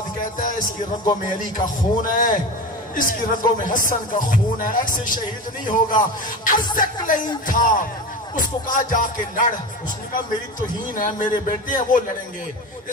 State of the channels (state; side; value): normal; both; correlation 0.27